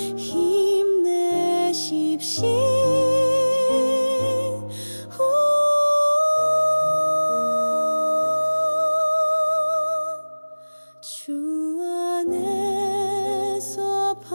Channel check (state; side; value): inverted; both; correlation -1.00